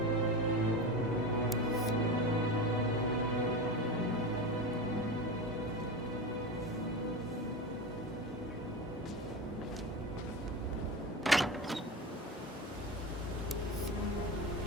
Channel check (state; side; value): normal; both; correlation 0.25